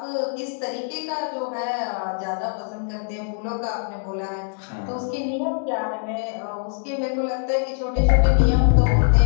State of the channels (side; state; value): right; silent; 60 dB below the other